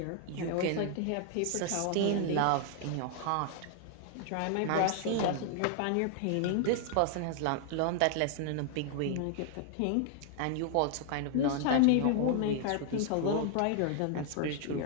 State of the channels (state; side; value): different; both; correlation 0.00